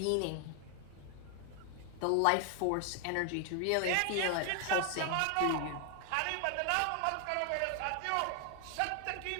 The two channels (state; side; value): different; both; correlation 0.00